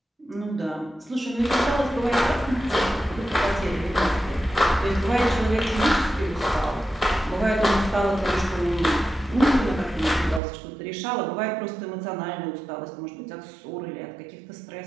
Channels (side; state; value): left; drops out; at 10.4 s